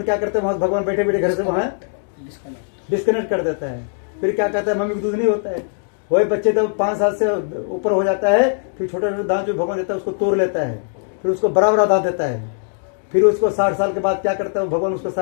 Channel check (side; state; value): right; silent; digital silence